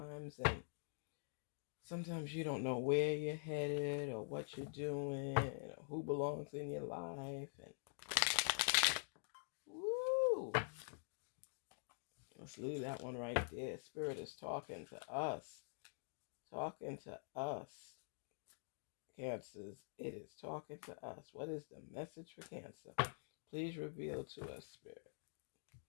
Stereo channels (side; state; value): right; silent; digital silence